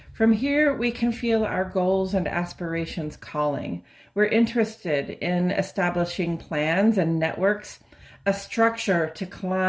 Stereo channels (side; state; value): both; identical; correlation 1.00